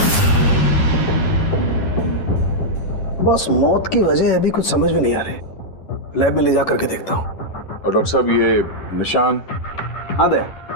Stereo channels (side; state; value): right; late; 11 ms